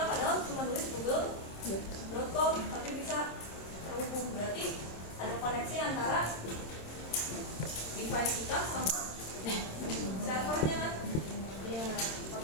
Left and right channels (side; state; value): right; late; 26 ms